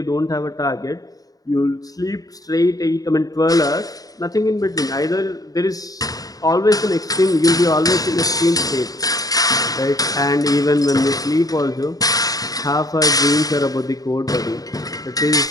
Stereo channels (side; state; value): right; late; 0.18 ms